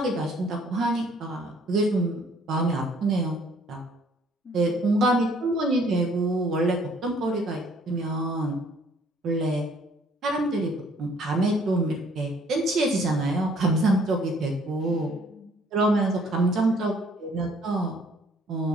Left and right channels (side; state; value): both; normal; correlation 0.60